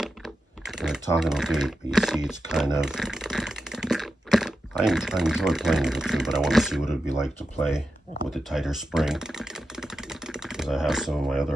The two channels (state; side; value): normal; both; correlation 0.90